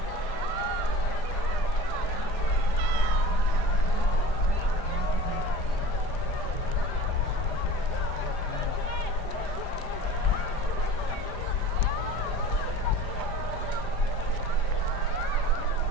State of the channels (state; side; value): late; right; 5.0 ms